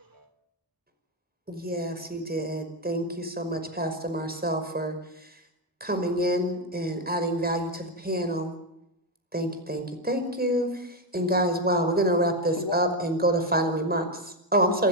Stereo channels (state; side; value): normal; both; correlation 0.08